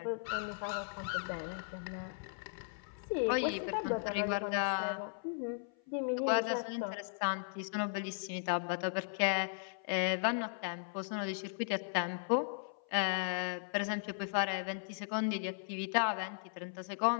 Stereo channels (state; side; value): silent; right; 53 dB below the other